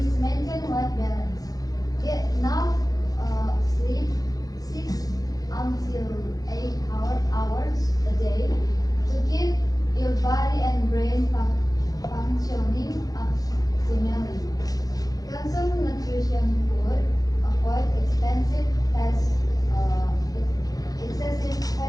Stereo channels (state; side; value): late; right; 0.18 ms